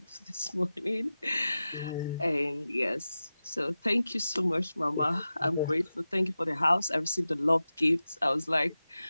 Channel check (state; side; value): inverted; both; correlation -0.93